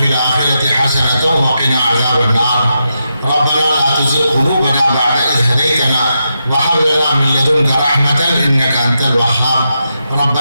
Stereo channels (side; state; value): both; inverted; correlation -0.85